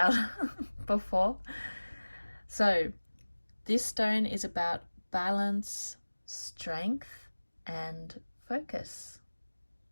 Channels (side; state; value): both; inverted; correlation -1.00